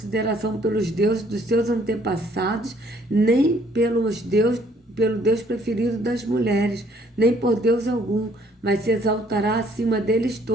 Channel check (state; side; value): normal; both; correlation 0.63